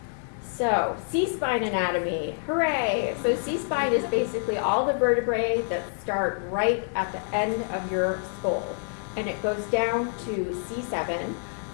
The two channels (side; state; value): right; silent; digital silence